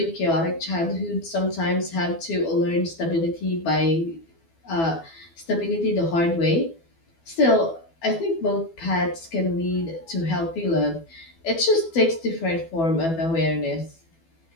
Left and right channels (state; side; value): late; right; 12 ms